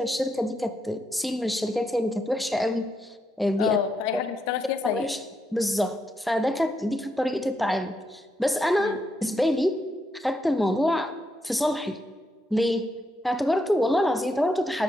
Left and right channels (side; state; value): both; normal; correlation 0.81